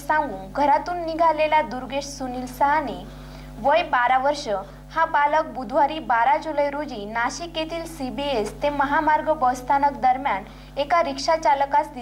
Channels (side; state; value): both; identical; correlation 1.00